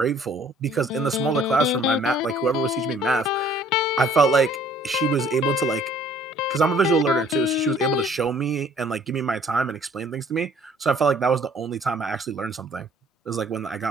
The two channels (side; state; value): both; normal; correlation 0.57